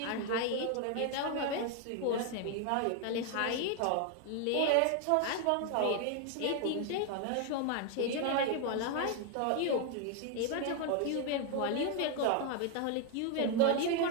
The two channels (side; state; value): both; different; correlation 0.01